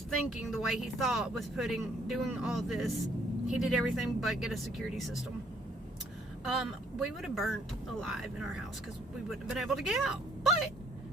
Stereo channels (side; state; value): both; normal; correlation 0.65